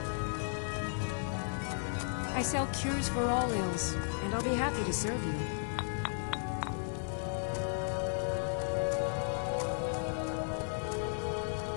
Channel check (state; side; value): silent; right; 55 dB below the other